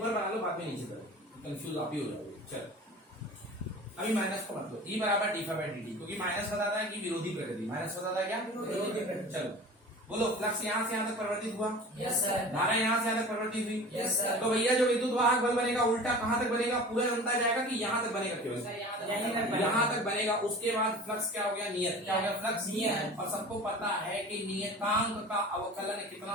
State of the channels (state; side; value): normal; both; correlation 0.39